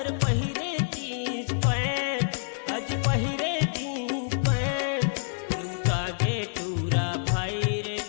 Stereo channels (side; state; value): right; silent; digital silence